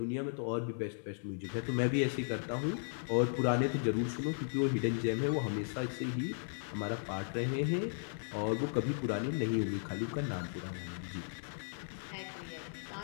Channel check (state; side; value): silent; right; 54 dB below the other